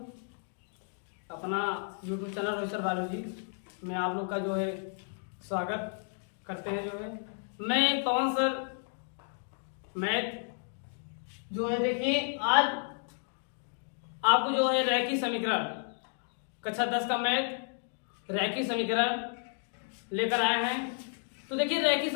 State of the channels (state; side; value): silent; right; 56 dB below the other